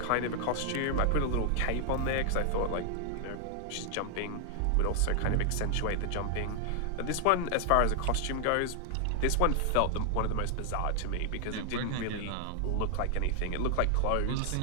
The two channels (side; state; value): both; different; correlation 0.00